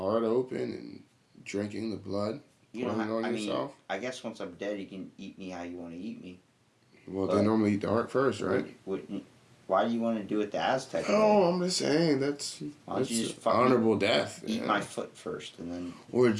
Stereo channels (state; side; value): identical; both; correlation 1.00